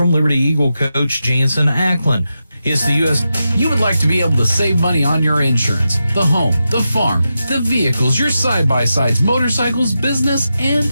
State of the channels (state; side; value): inverted; both; correlation -0.89